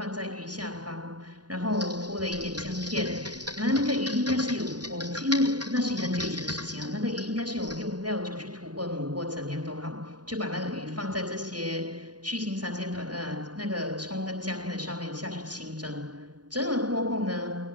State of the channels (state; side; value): late; left; 0.69 ms